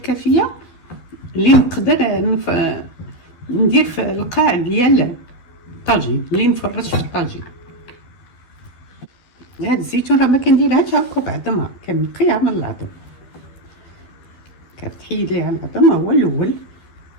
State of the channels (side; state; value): right; late; 12 ms